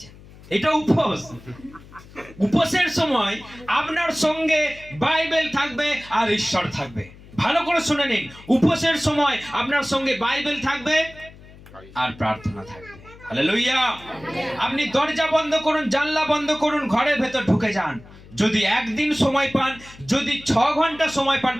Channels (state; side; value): noise; left; hum, 21 dB below the sound